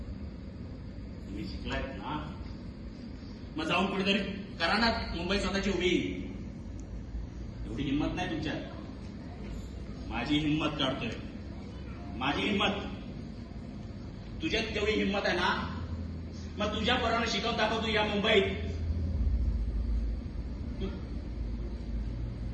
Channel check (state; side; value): identical; both; correlation 1.00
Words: तुम्ही शिकलायत ना मग जाऊन कुठेतरी करा ना मुंबई स्वतःची उभी. एवढी हिंमत नाही तुमच्यात. माझी हिंमत काढतोय. माझी हिंमत. तुझ्यात तेवढी हिंमत आहे ना मग तुझ्या पोरांना शिकवून दाखवतो या मुंबईत.